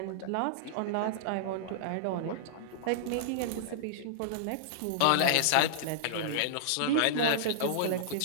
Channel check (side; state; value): both; different; correlation -0.02